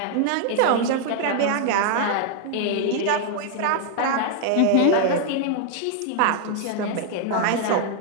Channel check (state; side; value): different; both; correlation 0.00